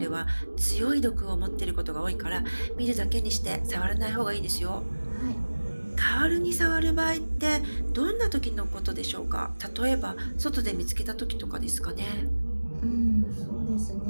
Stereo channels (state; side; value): inverted; both; correlation -1.00